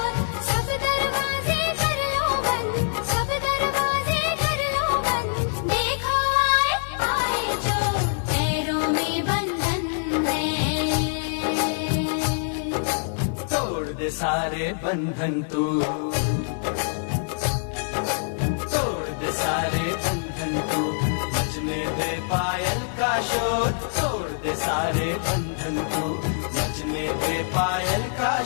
सब दरवाजे कर लो बंद, सब दरवाजे कर लो बंद, देखो आए आए जो, पैरों में बंधन है। तोड़ दे सारे बंधन तू, तोड़ दे सारे बंधन तू, बजने दे पायल का शोर, तोड़ दे सारे बंधन तू, बजने दे पायल का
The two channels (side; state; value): right; silent; digital silence